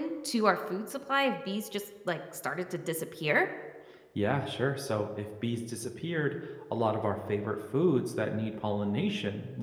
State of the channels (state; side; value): identical; both; correlation 1.00